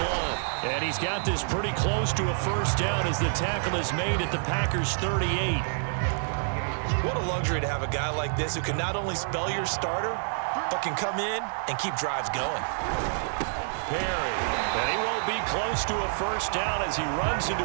And he's got this pretty close to a first down as the tackle is made at the Packers' 38. What a luxury to have a guy like this who can not only spell your starter, but can come in and keep drives going. Perry, and he won't be close to a first down as he runs into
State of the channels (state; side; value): silent; left; 58 dB below the other